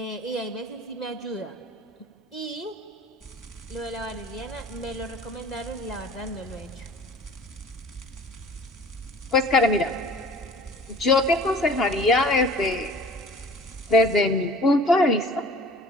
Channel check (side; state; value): both; normal; correlation 0.47